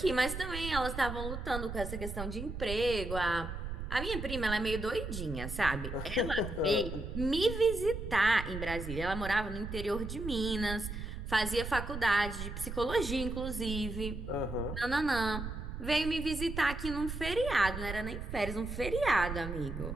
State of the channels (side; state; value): right; noise; rumble, 6 dB below the sound